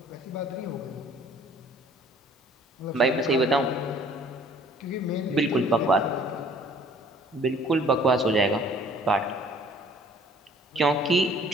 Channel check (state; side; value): normal; both; correlation 0.55